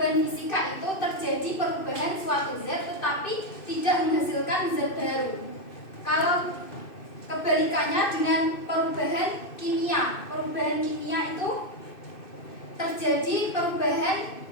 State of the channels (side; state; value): right; late; 2.6 ms